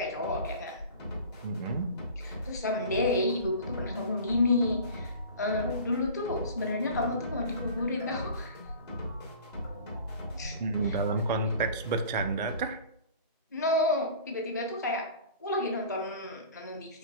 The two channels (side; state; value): both; inverted; correlation -0.42